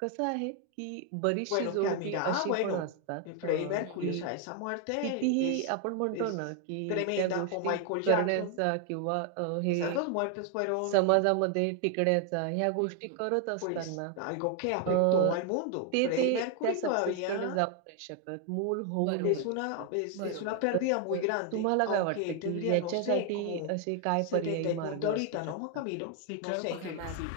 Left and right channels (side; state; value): both; different; correlation 0.00